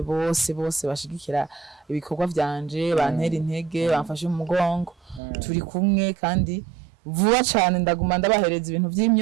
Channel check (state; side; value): drops out; left; at 5.2 s